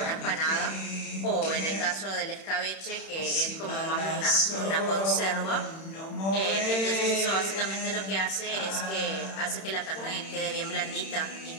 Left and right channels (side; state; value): right; late; 31 ms